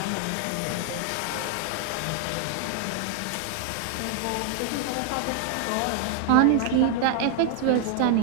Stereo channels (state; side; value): different; both; correlation 0.00